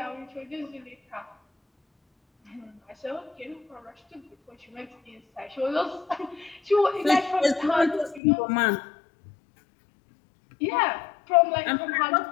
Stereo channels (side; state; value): right; drops out; at 8.2 s